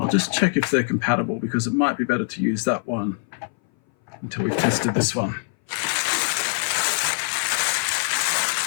just check if they're compatible, because it might be better to use that one until we've tested this one.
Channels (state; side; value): silent; right; 60 dB below the other